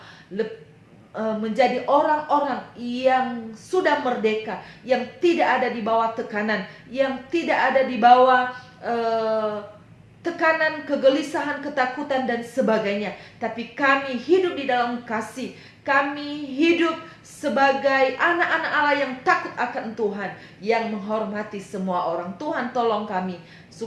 menjadi orang-orang yang sudah merdeka, yang tidak ada di bawah tekanan, yang tidak ada di bawah tekanan, kegelisahan, ketakutan dan sebagainya. Tapi kami hidup di dalam kasih. Kami hidup sebagai anak-anak Allah yang takut akan Tuhan, yang menghormati semua orang. Tuhan tolong kami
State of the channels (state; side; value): identical; both; correlation 1.00